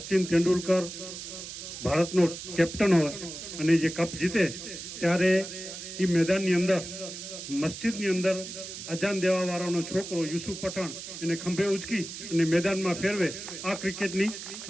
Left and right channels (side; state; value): right; noise; hiss, 10 dB below the sound